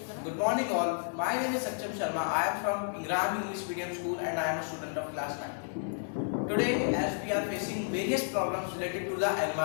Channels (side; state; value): right; silent; digital silence